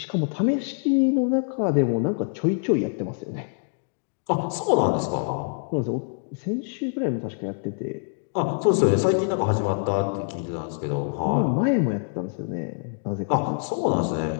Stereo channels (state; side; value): silent; right; digital silence